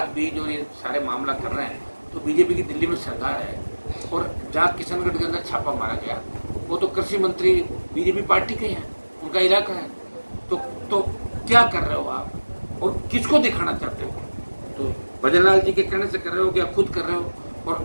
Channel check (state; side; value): inverted; both; correlation -1.00